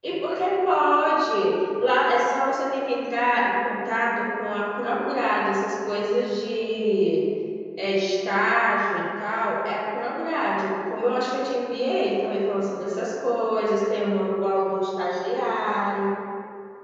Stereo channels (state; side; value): identical; both; correlation 1.00